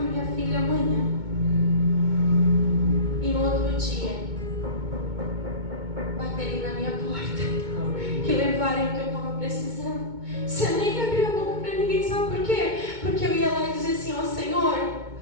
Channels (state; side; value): late; left; 2.2 ms